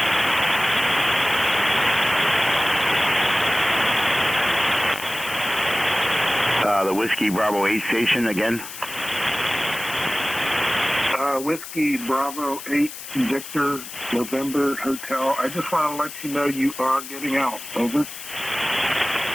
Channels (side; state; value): left; noise; hiss, 11 dB below the sound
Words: The Whiskey Bravo 8 station again. Whiskey Bravo 8 Victor November Hotel. I just want to let you know you are getting out. Over.